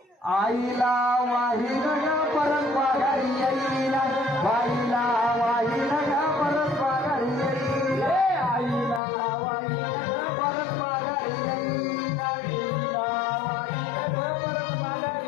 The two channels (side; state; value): right; drops out; at 9.0 s